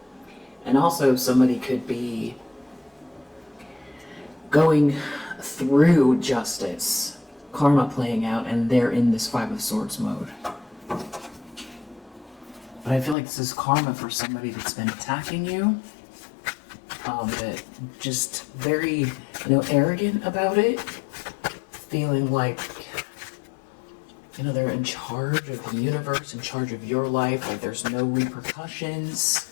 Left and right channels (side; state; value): right; drops out; at 13.2 s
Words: And also somebody could be going through justice, karma playing out, and they're in this Five of Swords mode. But I feel like this is karma for somebody that's been attacking you. That just very, arrogant about it, feeling like, they're in charge of the universe, in charge of your life, like there's no repercussions